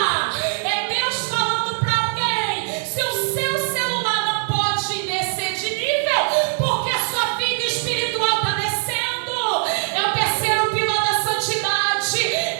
É Deus falando para alguém: se o seu celular não pode descer de nível porque a sua vida espiritual está descendo, é o terceiro pilar da santidade,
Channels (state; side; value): silent; left; 65 dB below the other